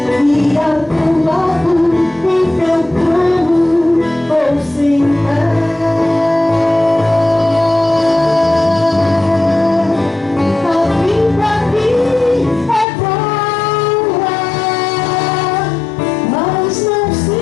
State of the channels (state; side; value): drops out; right; at 12.9 s